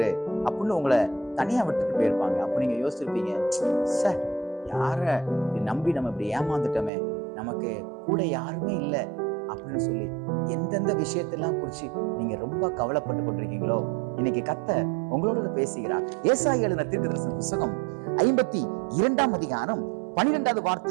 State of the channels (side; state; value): left; drops out; at 6.9 s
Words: அப்படின்னு உங்களை தனியா விட்டுட்டு போயிருப்பாங்க. அப்ப நீங்க யோசிச்சிருப்பீங்க, சார் யார நம்பி நம்ம இப்படி ஏமாந்துட்டோமே, நமக்கு கூட யாருமே இல்லை அப்படின்னு சொல்லி எந்தெந்த விஷயத்தெல்லாம் குறிச்சு நீங்க ரொம்ப கவலைப்பட்டு கொண்டிருக்கீங்களோ, இன்னைக்கு கர்த்தர் உங்களோட பேசுகிறார். ஏசாயா எழுதின தீர்க்கதரிசன புத்தகம் 52ஆம் அதிகாரம் 12வது